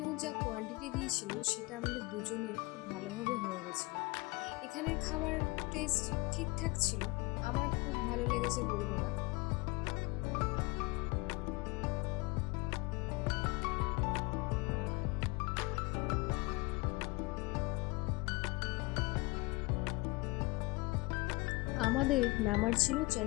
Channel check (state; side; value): quieter; right; 24.7 dB